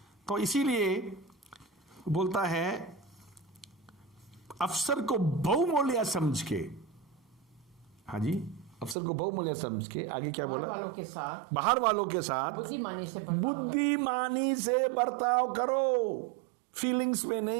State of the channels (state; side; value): drops out; left; at 9.0 s